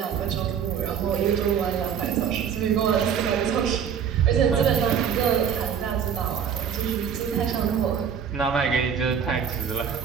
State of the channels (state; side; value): quieter; left; 7.7 dB